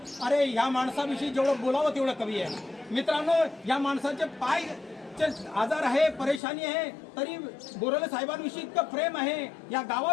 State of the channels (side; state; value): right; drops out; at 6.4 s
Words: अरे ह्या माणसाविषयी जेवढं बोलावं तेवढं कमी आहे मित्रांनो। या माणसाचे पाय आजार आहे, परेशानी आहे, तरी बोराले साहेबांविषयी इतकं प्रेम आहे, या